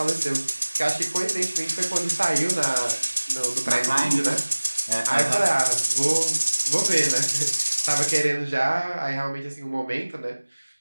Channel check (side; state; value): both; inverted; correlation -1.00